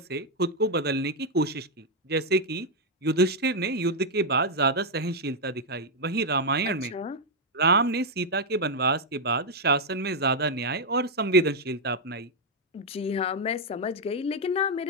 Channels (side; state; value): both; normal; correlation 0.00